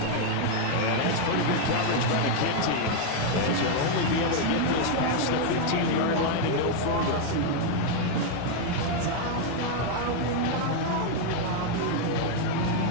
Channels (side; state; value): both; different; correlation 0.00